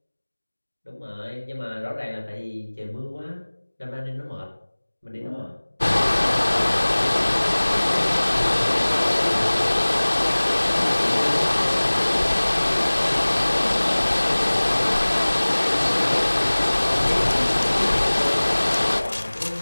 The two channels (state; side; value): inverted; both; correlation -1.00